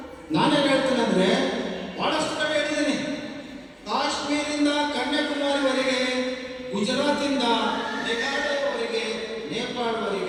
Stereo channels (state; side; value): identical; both; correlation 1.00